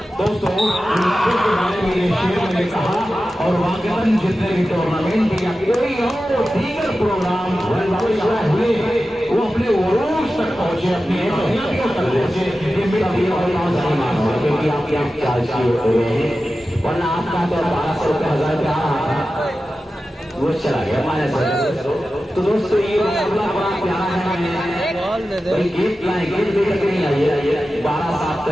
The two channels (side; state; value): both; normal; correlation 0.93